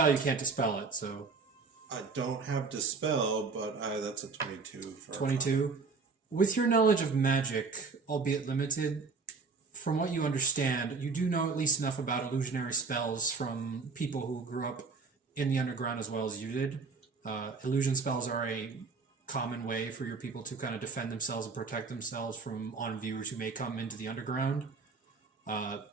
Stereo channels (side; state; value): left; quieter; 4.7 dB